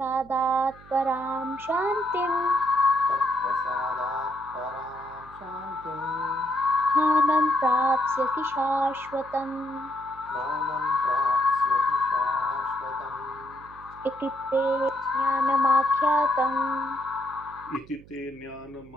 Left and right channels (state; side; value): noise; right; hum, 22 dB below the sound